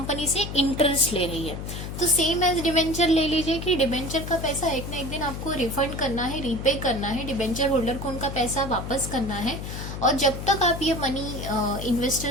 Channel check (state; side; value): noise; left; hum, 7 dB below the sound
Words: से इंटरेस्ट ले रही है। तो सेम एज डिबेंचर ले लीजिए कि डिबेंचर का पैसा एक ना एक दिन आपको रिफंड करना है, रीपे करना है, डिबेंचर होल्डर को उनका पैसा वापस करना है। और जब तक आप ये मनी